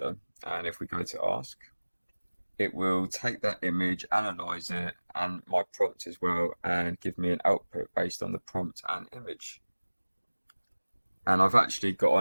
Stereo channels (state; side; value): inverted; both; correlation -1.00